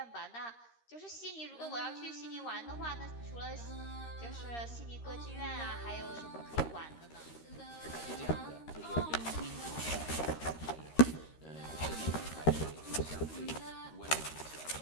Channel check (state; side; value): late; right; 13 ms